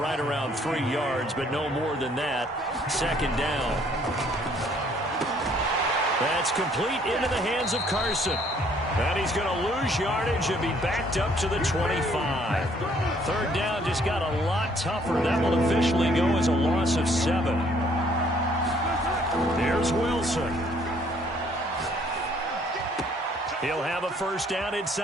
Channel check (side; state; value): both; normal; correlation 0.63